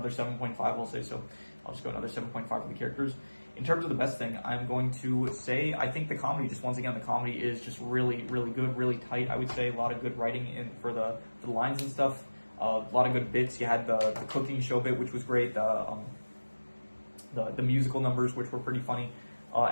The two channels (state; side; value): inverted; both; correlation -1.00